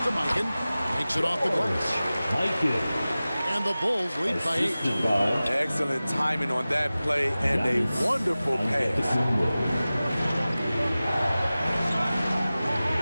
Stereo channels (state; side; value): inverted; both; correlation -0.97